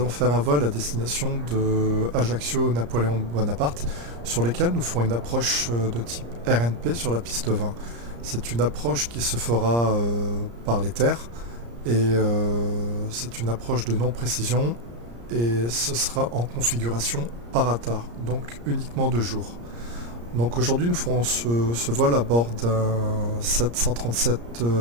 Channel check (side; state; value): left; late; 34 ms